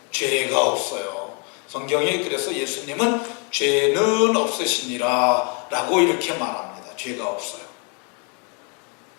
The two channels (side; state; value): right; quieter; 35.5 dB